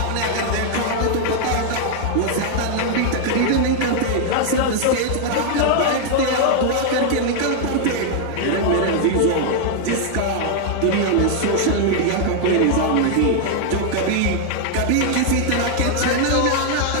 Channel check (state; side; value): different; both; correlation 0.00